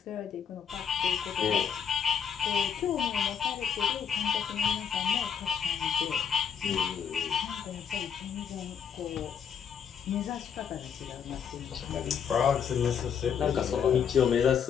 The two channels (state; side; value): quieter; right; 7.5 dB